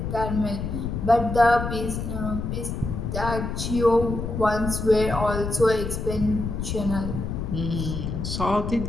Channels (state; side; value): noise; left; rumble, 4 dB below the sound